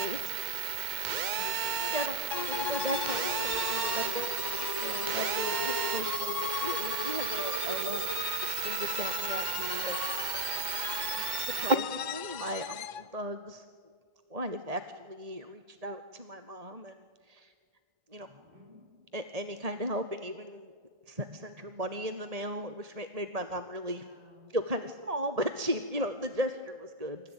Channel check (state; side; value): late; left; 2.1 ms